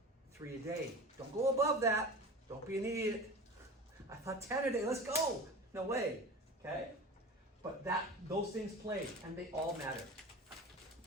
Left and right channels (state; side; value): normal; both; correlation 0.33